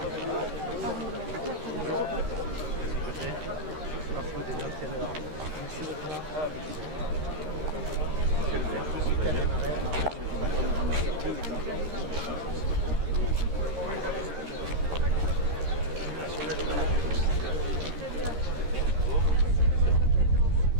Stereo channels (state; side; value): late; left; 13 ms